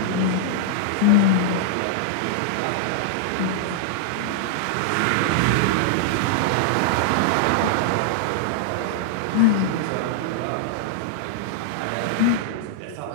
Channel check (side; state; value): both; different; correlation -0.01